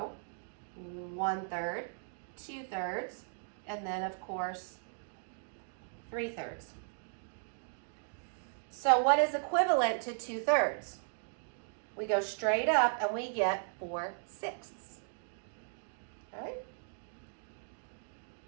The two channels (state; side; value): silent; left; digital silence